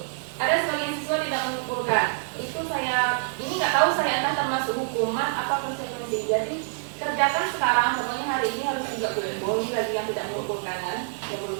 ada sebagian siswa tidak mengumpulkan. Itu saya, ini nggak tahu saya akan termasuk hukuman apa konsekuensi. Jadi kerjakan sekarang, pokoknya hari ini harus juga kumpul. Ini lagi yang tidak mengumpulkan kan, yang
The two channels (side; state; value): left; silent; digital silence